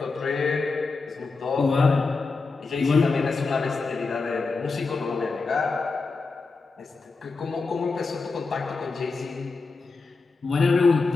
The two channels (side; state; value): right; quieter; 4.1 dB